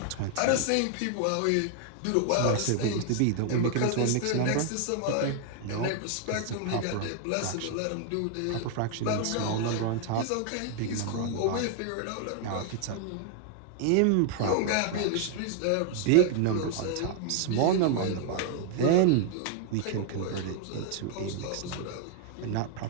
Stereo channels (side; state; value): both; different; correlation 0.00